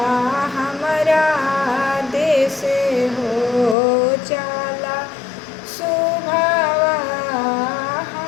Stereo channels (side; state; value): right; drops out; at 3.8 s